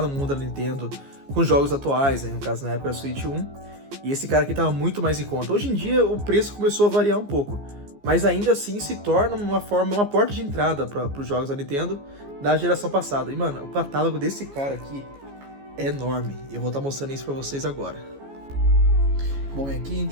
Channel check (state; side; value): late; left; 15 ms